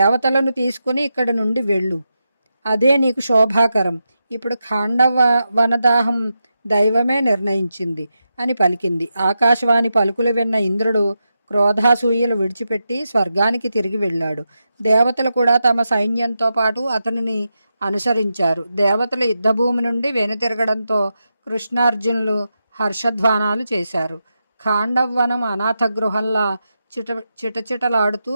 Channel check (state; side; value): inverted; both; correlation -0.88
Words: తీసుకుని ఇక్కడి నుండి వెళ్ళు. అదే నీకు శోభాకరం. ఇప్పుడు ఖాండవ వనదాహం దైవమే నిర్ణయించింది అని పలికింది. ఆకాశవాణి పలుకులు విన్న ఇంద్రుడు క్రోధాసూయలు విడిచిపెట్టి స్వర్గానికి తిరిగి వెళ్ళాడు. దేవతలు కూడా తమ సైన్యంతో పాటు అతనిని అనుసరించారు. దేవతలు యుద్ధభూమి నుండి వెనుతిరగడంతో కృష్ణార్జునులు హర్షధ్వానాలు చేశారు. ఖాండవ్వనం అనాథ గృహంలా చిటచిటలాడుతూ